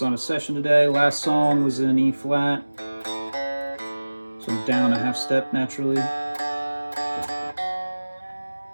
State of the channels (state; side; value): inverted; both; correlation -1.00